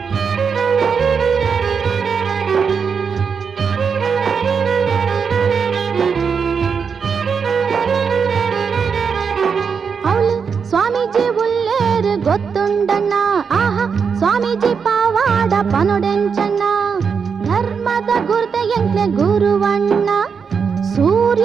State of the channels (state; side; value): quieter; left; 6.1 dB